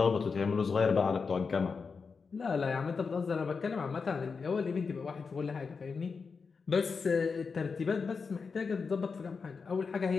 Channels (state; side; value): quieter; right; 5.1 dB